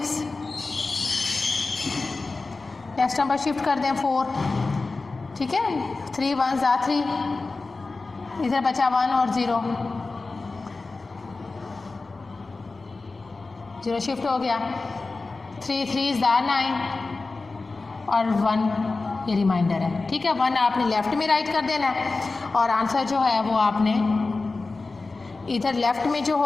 Next number shift कर दें 4। ठीक है, 3 1s are 3, इधर बचा 1 और 0, 0 शिफ्ट हो गया। 3 3s are 9 और 1 ये रिमाइंडर है। ठीक है, 1 आपने लेफ़्ट में राइट कर देना है, और आंसर जो है वो आपने इधर लेफ़्ट में जो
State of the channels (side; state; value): right; quieter; 3.7 dB